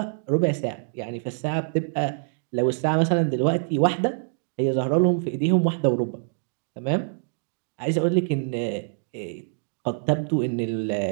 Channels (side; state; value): left; silent; digital silence